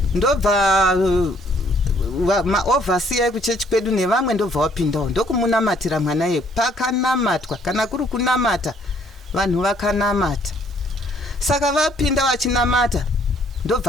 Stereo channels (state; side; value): normal; both; correlation 0.64